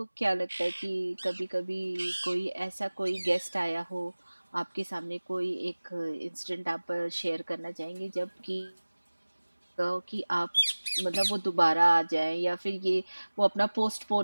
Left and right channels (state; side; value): inverted; both; correlation -1.00